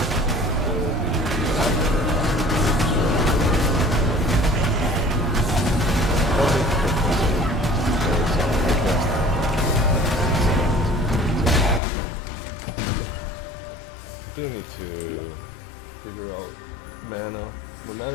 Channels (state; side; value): drops out; right; at 11.8 s